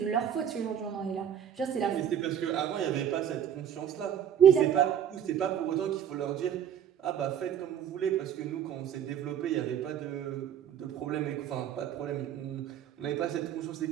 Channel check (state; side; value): quieter; left; 9.3 dB